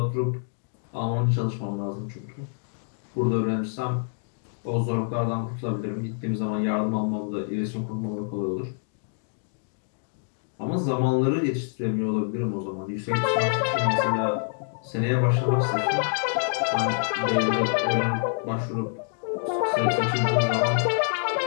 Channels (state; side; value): silent; right; digital silence